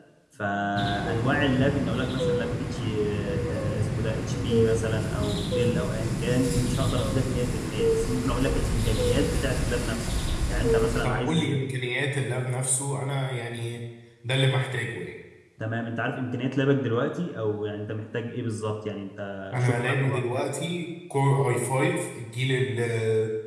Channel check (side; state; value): both; identical; correlation 1.00